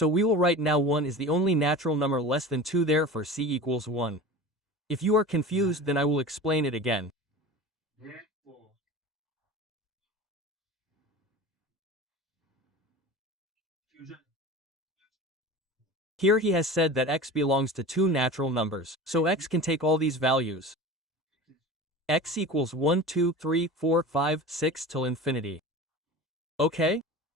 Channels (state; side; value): normal; both; correlation 0.34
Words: we will write now 1 is the only natural number less than 2, therefore C equals 1. If you are confused, then I will explain it again. Here he has said that x belongs to two natural numbers, so x can take all these values. X equals 1, 2, 3, 4, 5, 6 till infinity. Okay?